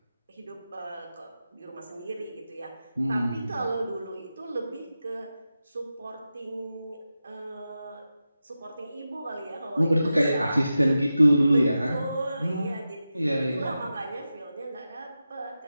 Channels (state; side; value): inverted; both; correlation -0.92